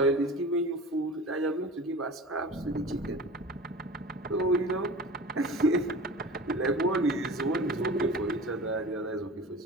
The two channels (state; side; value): normal; both; correlation 0.36